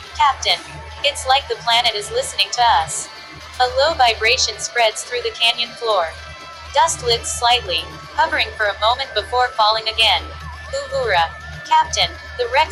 Captain. It's like the planet is listening to us. A low vibration spreads through the canyon floor. Dust lifts slightly, hovering for a moment before falling again. Uhura. Captain, the wreck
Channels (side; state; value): both; identical; correlation 1.00